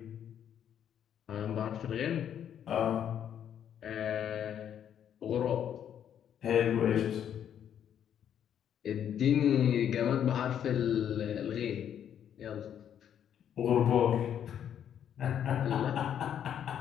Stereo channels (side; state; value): right; quieter; 9.4 dB